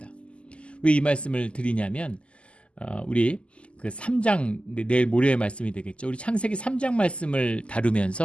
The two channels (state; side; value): late; right; 0.055 ms